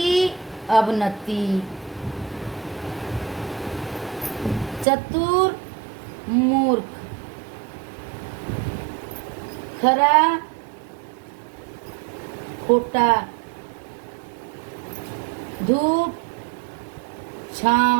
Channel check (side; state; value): left; drops out; at 4.9 s